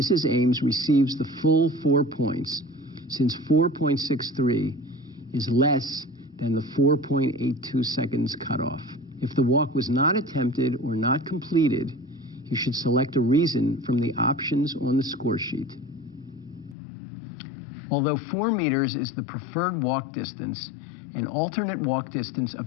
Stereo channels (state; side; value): drops out; right; at 16.8 s